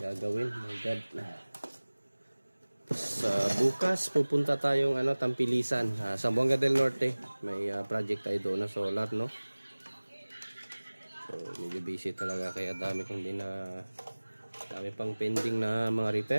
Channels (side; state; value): both; inverted; correlation -1.00